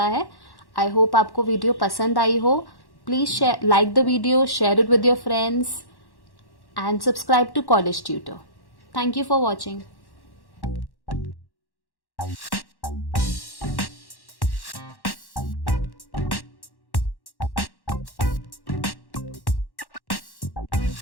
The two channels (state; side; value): late; right; 1.1 ms